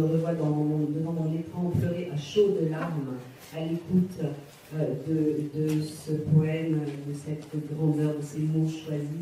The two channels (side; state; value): both; identical; correlation 1.00